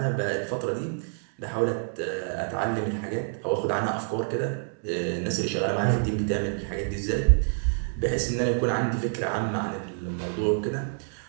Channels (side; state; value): left; silent; digital silence